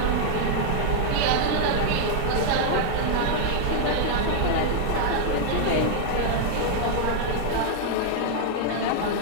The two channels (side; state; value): both; different; correlation 0.00